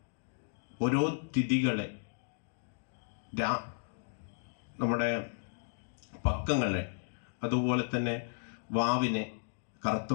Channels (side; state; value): right; silent; digital silence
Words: ഓരോ തിഥികളെ, നമ്മുടെ പക്കങ്ങളെ, അതുപോലെ തന്നെ വാവിനെ, കറുത്ത